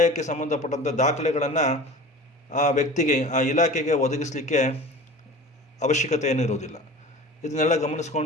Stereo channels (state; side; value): normal; both; correlation 0.38